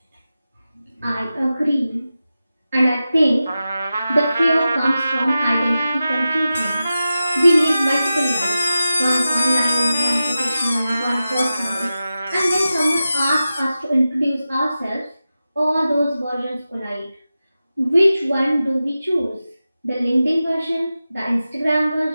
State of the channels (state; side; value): inverted; both; correlation -0.93